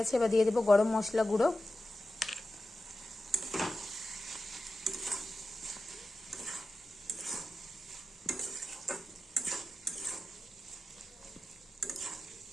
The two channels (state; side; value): normal; both; correlation 0.93